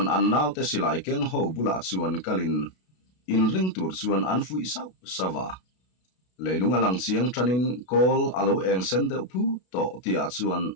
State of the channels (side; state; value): right; late; 32 ms